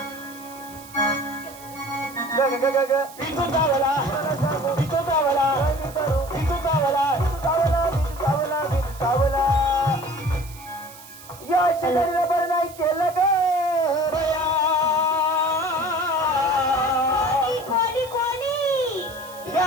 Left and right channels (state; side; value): noise; right; hiss, 19 dB below the sound